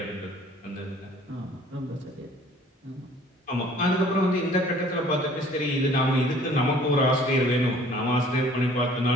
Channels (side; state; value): both; normal; correlation 0.54